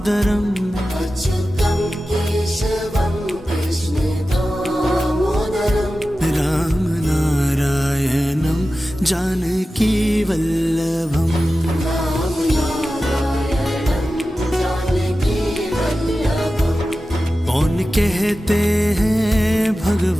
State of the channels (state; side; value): normal; both; correlation 0.94